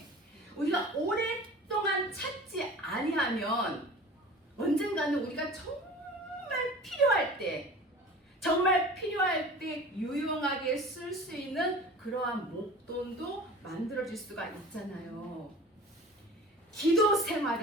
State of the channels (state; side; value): normal; both; correlation 0.40